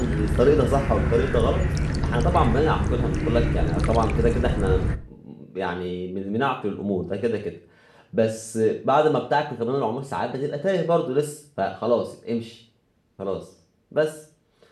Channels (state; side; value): identical; both; correlation 1.00